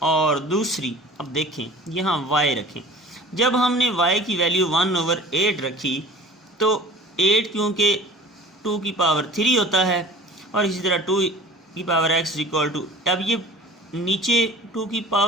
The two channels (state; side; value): normal; both; correlation 0.44